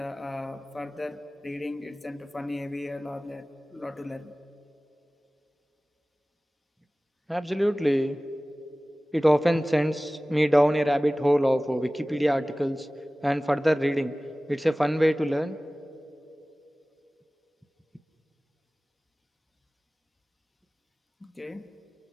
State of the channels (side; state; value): both; normal; correlation 0.98